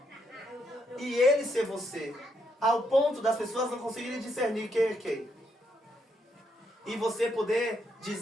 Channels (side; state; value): both; normal; correlation 0.77